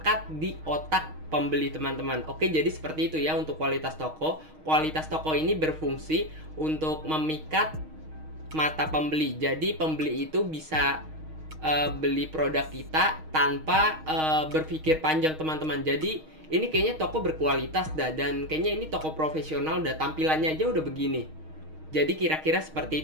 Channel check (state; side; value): late; left; 6.4 ms